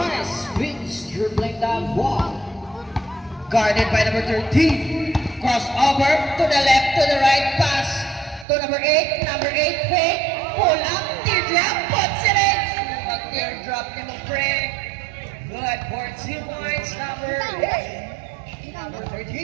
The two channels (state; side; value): drops out; left; at 8.5 s